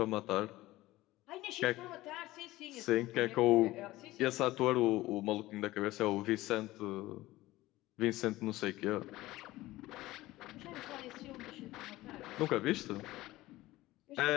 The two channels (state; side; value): quieter; right; 17.6 dB